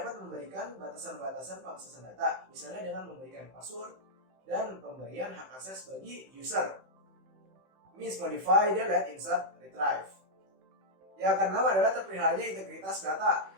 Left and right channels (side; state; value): left; late; 15 ms